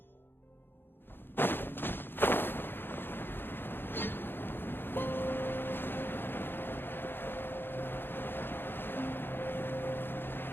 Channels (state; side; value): late; right; 0.10 ms